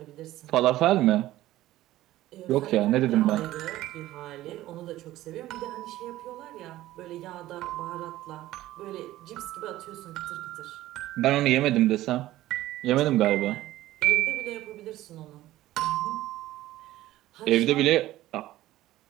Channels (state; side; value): quieter; left; 15.4 dB